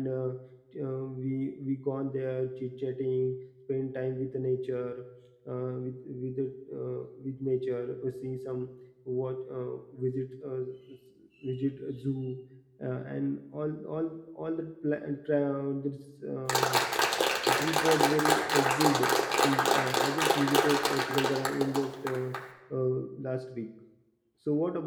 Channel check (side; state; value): both; identical; correlation 1.00